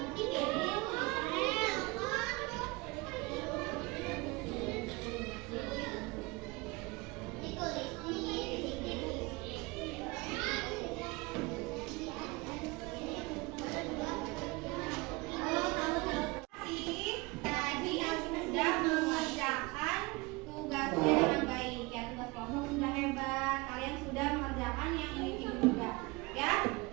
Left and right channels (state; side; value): quieter; left; 25.0 dB